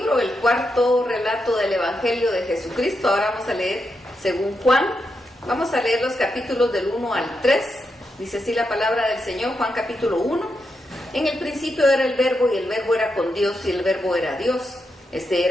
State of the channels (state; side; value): normal; both; correlation 0.85